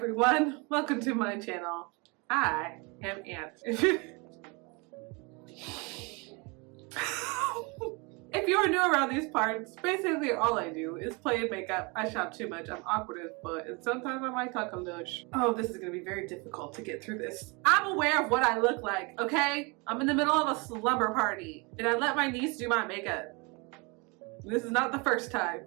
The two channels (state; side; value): quieter; left; 29.3 dB